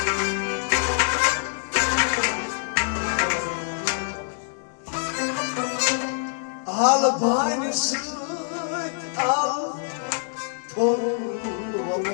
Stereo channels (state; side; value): silent; right; digital silence